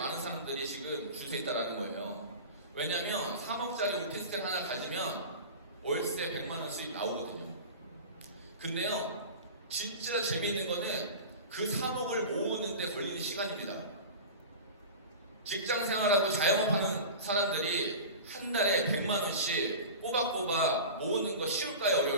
사람들이 지금 줄 수 있다는 거예요. 왜냐면 3억짜리 오피스텔 하나 가지면 월세 100만원 수입 나오거든요. 근데요, 진짜 재미있는 거는 그 3억을 모으는데 걸리는 시간입니다. 직장 생활하고 자영업하는 사람들이 한 달에 100만원씩 꼬박꼬박 모으는 거 쉬울까요?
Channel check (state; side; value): inverted; both; correlation -0.32